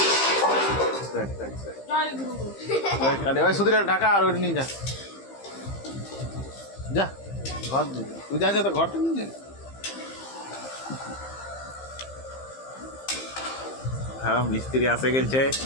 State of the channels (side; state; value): right; late; 15 ms